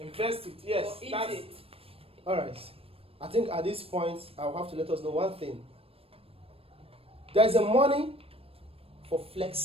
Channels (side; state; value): left; late; 0.28 ms